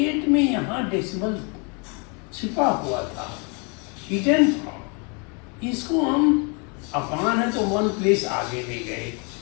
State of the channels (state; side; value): quieter; right; 34.3 dB